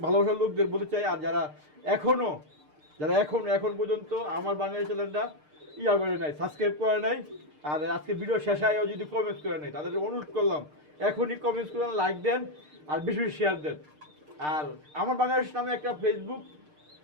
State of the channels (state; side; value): late; left; 6.6 ms